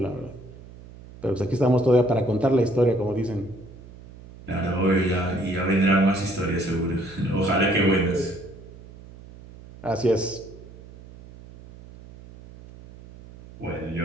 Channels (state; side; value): noise; right; hum, 19 dB below the sound